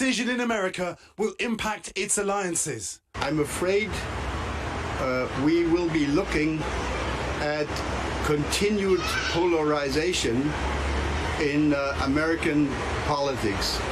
in America will impact its alliances. I'm afraid we will be looking at continued polarization in American politics.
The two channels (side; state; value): both; identical; correlation 1.00